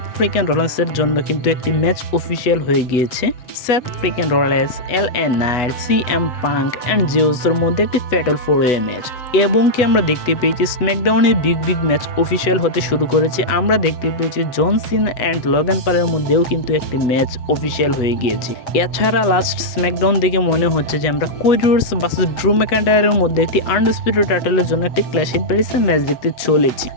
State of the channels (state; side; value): late; right; 8.1 ms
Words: ফ্রিকেন রোলেন্সের জন্য কিন্তু একটি ম্যাচ অফিসিয়াল হয়ে গিয়েছে। Seth Freakin Rollins, LA Knight, CM Punk and জিউসের মধ্যে একটি ফ্যাটাল 4-ওয়ে ম্যাচ, এবং কি আমরা দেখতে পেয়েছি স্ম্যাকডাউনে বিগ ম্যাচ অফিসিয়াল হতে শুরু করেছে। আমরা দেখতে পেয়েছি জন সিনা অ্যান্ড লোগান পলের মধ্যেও কিন্তু একটি ম্যাচ অফিসিয়াল হয়ে গিয়েছে। এছাড়া লাস্ট স্ম্যাকডাউন দেখে মনে হচ্ছে যে আমরা কোডি রোডস ভার্সেস ড্রু ম্যাকইন্টায়ারের মধ্যে একটি আনডিসপিউটেড টাইটেলের জন্য একটি ক্ল্যাশ ইন প্যারিসের ম্যাচ দেখতে চলেছি।